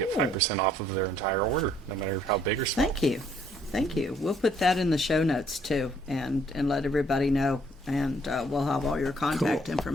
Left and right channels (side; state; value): both; normal; correlation 0.65